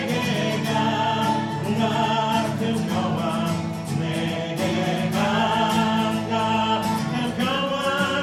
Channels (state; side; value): identical; both; correlation 1.00